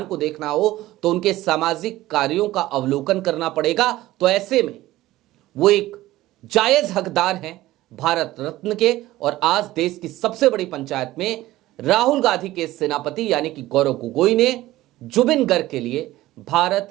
को देखना हो तो उनके सामाजिक कार्यों का अवलोकन करना पड़ेगा। तो ऐसे में वो एक जायज हकदार हैं भारत रत्न के, और आज देश की सबसे बड़ी पंचायत में राहुल गांधी के सेनापति यानी कि गौरव गोगोई ने जुबिन गर्ग के लिए भारत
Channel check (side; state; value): left; quieter; 16.4 dB